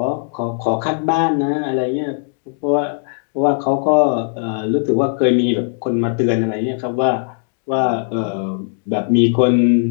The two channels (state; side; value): silent; right; digital silence